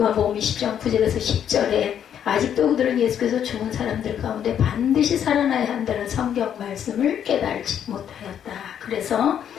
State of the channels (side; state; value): right; quieter; 9.2 dB